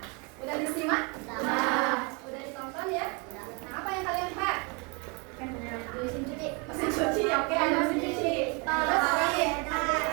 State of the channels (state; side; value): quieter; left; 31.8 dB